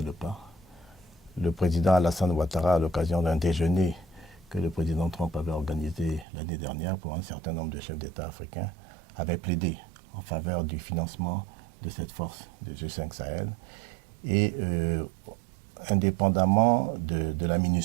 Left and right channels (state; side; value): drops out; left; at 6.2 s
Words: le pas. Le président Alassane Ouattara, à l'occasion d'un déjeuner que le président Trump avait organisé l'année dernière pour un certain nombre de chefs d'État africains, avait plaidé en faveur du financement de cette force de G5 Sahel. Et indépendamment de la